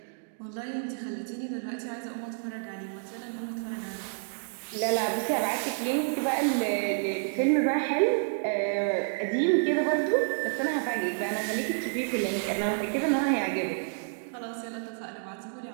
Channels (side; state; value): left; silent; digital silence